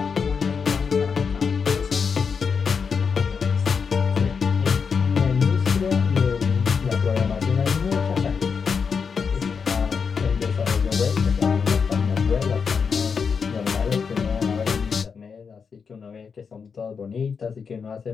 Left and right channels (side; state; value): right; quieter; 5.9 dB